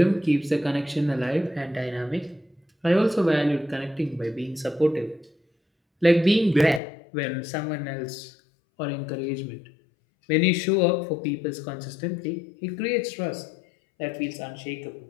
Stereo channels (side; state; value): right; drops out; at 6.8 s